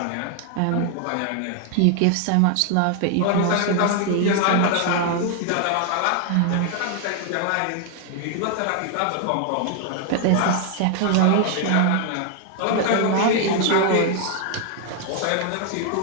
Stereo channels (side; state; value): both; different; correlation 0.00